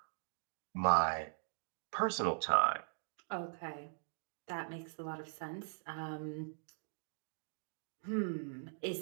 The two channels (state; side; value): silent; left; digital silence